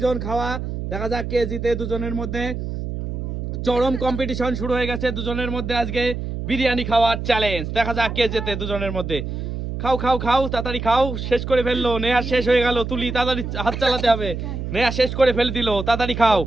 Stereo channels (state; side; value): noise; right; hum, 5 dB below the sound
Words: খাওয়া। দেখা যাক কে জিতে দুজনের মধ্যে। চরম কম্পিটিশন শুরু হয়ে গেছে দুজনের মধ্যে আজকে বিরিয়ানি খাওয়ার চ্যালেঞ্জ। দেখা যাক কে জেতে দুজনের মধ্যে। খাও খাও খাও তাড়াতাড়ি খাও। শেষ করে ফেললো নেহা, শেষ হয়ে গেল। তুলি তাড়াতাড়ি হাত চালাতে হবে। নেহা শেষ করে ফেল দিল। তাড়াতাড়ি খাও।